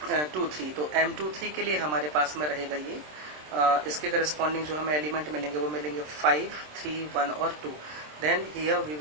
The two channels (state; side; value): late; left; 27 ms